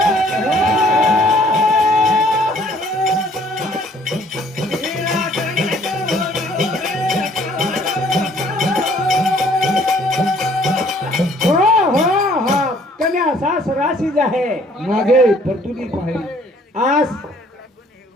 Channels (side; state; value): both; normal; correlation 0.59